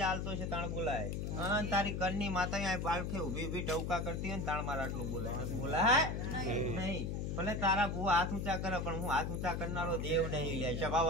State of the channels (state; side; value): noise; left; hum, 2 dB below the sound